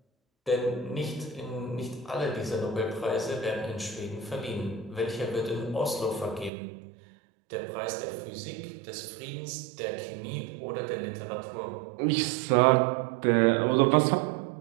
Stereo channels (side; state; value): left; drops out; at 6.5 s